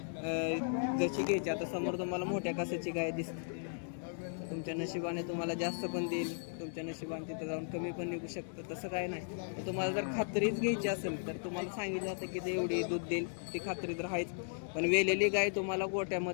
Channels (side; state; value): right; silent; digital silence